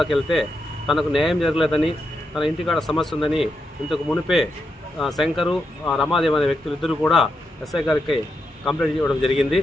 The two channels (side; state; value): both; normal; correlation 0.84